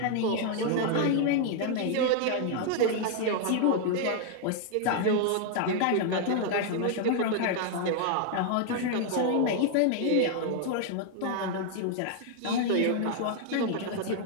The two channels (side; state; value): both; different; correlation 0.00